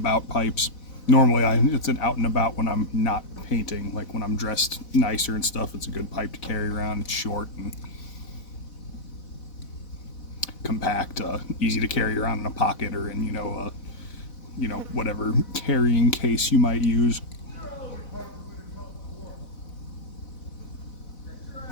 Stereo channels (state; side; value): late; right; 4.0 ms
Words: pipes. Normally it's an out and about when I'm not painting, like when I'm dressed nicer and stuff. It's a good pipe to carry around. It's short and compact, easy to carry around in a pocket or in whatever carrying case you might use.